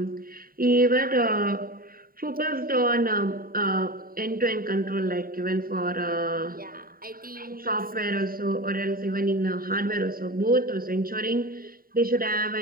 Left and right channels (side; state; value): left; late; 0.42 ms